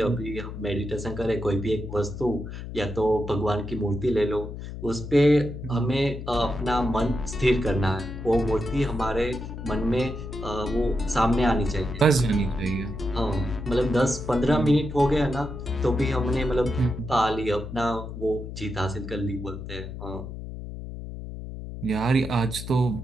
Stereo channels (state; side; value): noise; left; hum, 9 dB below the sound